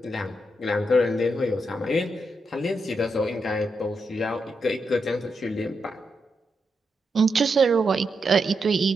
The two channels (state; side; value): normal; both; correlation 0.84